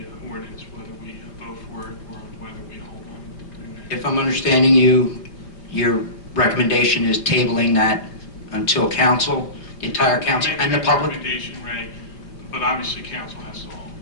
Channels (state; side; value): late; right; 4.8 ms